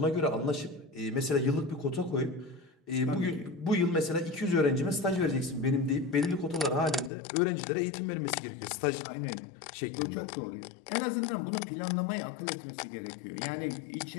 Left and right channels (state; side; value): drops out; right; at 7.1 s